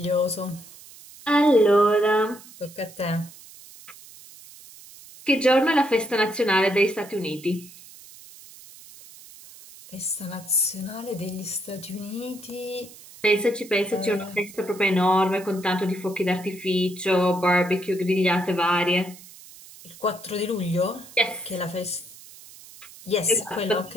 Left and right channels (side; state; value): right; noise; hiss, 20 dB below the sound